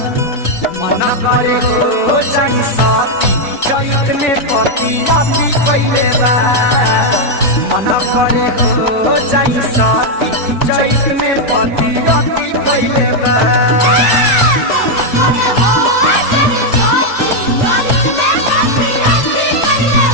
मना करे हो जाई सती जैत में पति आती कैले बा मना करे हो जाई सती जैत में पति आती कैले बा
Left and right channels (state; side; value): late; right; 4.0 ms